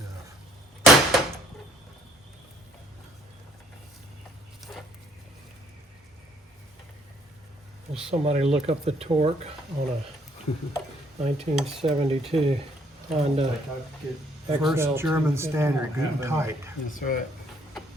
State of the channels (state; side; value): normal; both; correlation 0.65